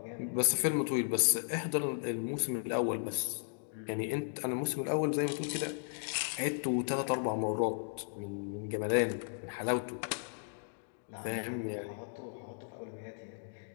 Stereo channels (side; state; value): right; silent; digital silence